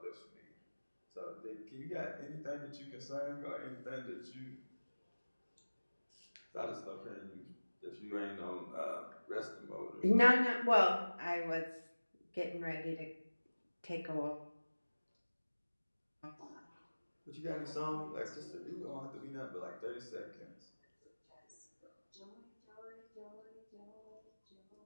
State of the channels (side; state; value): both; inverted; correlation -1.00